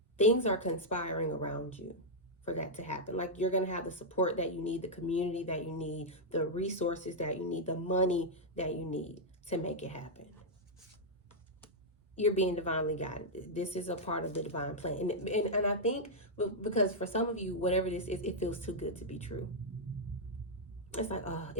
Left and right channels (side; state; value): both; normal; correlation -0.04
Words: things are conspiring around you for that to happen. Like you're going to have the support that you need, the community that you need, the resources that you need, the money that you need to make it happen. You're being divinely guided. This is a part of the divine plan. And I think because for some of you, whatever this is, it feels too good to be true. It's like,